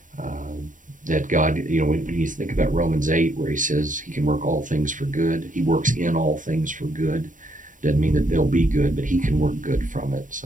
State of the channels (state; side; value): late; left; 0.38 ms